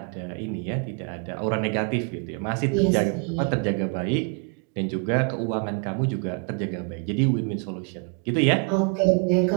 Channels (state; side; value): quieter; left; 34.8 dB